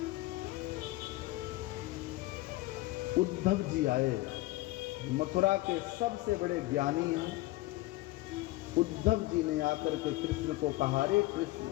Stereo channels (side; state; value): right; quieter; 18.5 dB